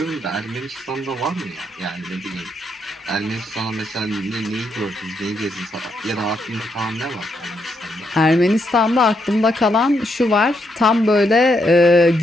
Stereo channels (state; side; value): normal; both; correlation 0.78